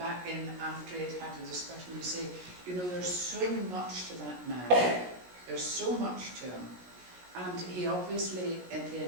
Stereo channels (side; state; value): left; late; 17 ms